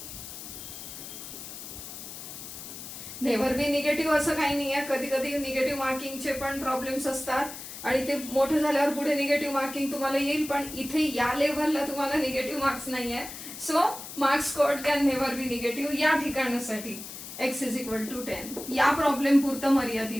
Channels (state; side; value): noise; left; hiss, 11 dB below the sound